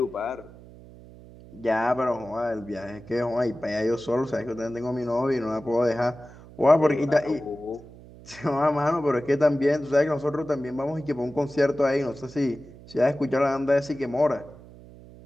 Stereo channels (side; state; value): right; noise; hum, 20 dB below the sound